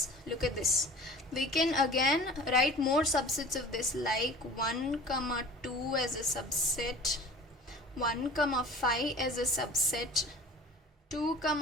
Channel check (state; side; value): normal; both; correlation 0.43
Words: look at this. We can again write more subsets of this, like 1, 2 as a subset, 1, 5 as a subset, 2,